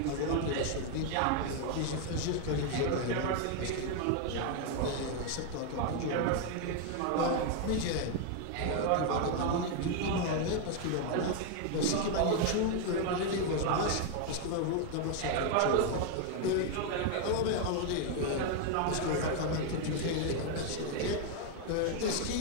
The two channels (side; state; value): both; different; correlation 0.01